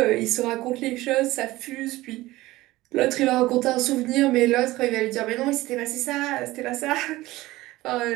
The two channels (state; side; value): quieter; left; 18.2 dB